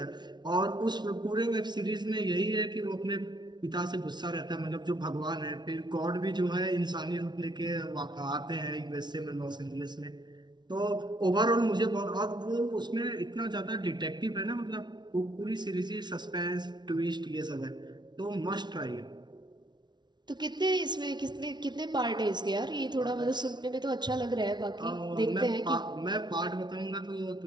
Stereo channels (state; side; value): late; left; 0.20 ms